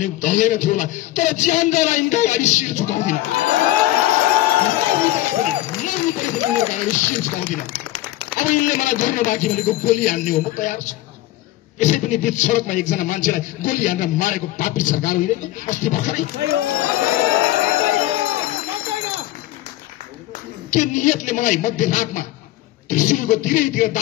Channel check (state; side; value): quieter; right; 15.8 dB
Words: थियो होला। तर ज्यानका यिनका अगाडि शिर झुकाउँदिन, शिर झुकाउँदिन। अब यिनले मलाई गर्न बाँकी भनेको गोली हान्ने हो, म तयार छु। यसै पनि बीच सडकमा एकजना मान्छेलाई गोली हानेर मारेको पापी सरकार होइन अस्ति भर्खरै? के नियतले मलाई मध्यरातमा त्रिशुलको तिरैतिर